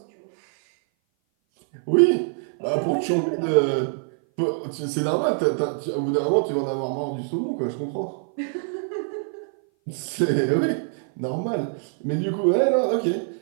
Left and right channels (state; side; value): silent; left; 57 dB below the other